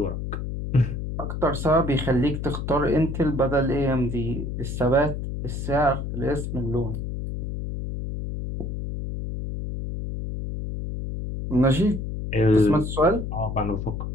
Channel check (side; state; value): left; noise; hum, 5 dB below the sound